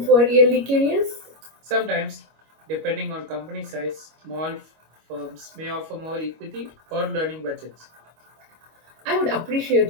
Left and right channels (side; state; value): left; late; 25 ms